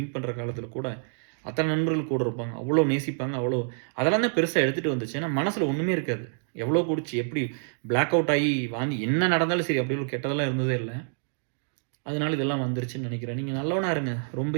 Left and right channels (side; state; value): left; silent; digital silence